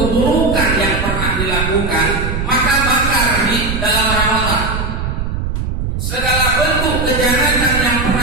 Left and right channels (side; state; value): right; noise; rumble, 3 dB below the sound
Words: yang pernah dilakukan, maka bakar di dalam Ramadan. Segala bentuk kejahatan yang